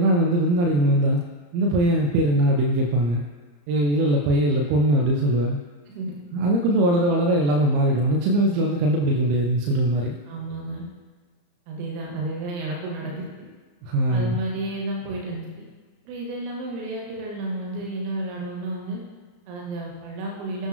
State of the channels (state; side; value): late; left; 34 ms